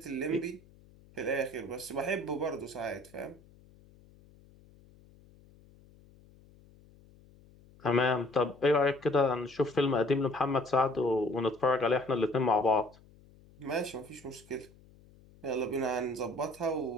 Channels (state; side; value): noise; left; hum, 26 dB below the sound